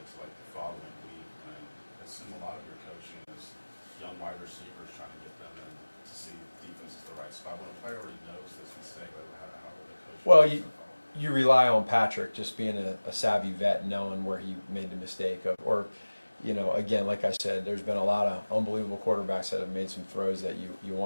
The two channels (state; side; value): inverted; both; correlation -1.00